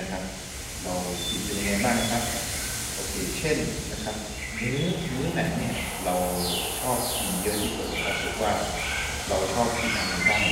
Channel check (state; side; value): identical; both; correlation 1.00